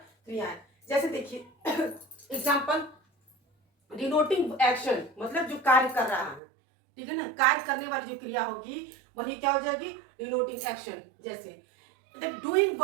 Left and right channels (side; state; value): left; drops out; at 6.4 s